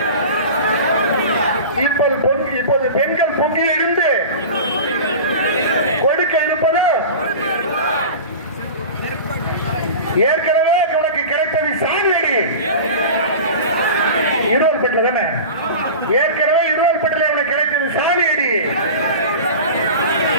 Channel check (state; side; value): inverted; both; correlation -0.33